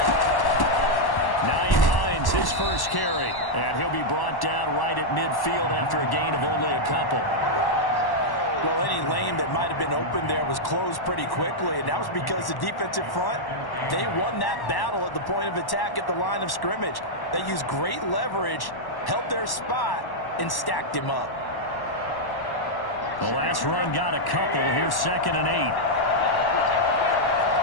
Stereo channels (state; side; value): late; right; 1.1 ms